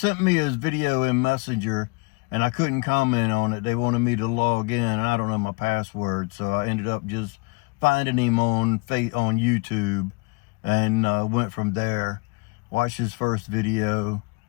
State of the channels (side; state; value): right; quieter; 29.3 dB